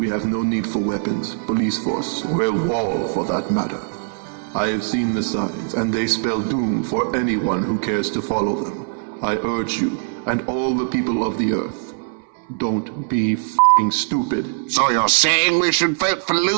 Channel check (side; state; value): left; silent; digital silence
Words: have no need for weapons, police force, or a wall for that matter. I have seen the signs, and they spell doom for anyone who cares to follow them. I urge you, and all the people of the Earth, don't be f***ing stupid. So you're saying we should vote for